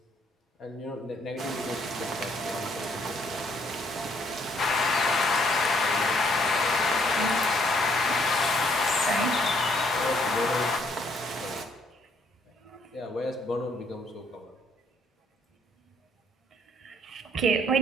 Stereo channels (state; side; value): normal; both; correlation 0.67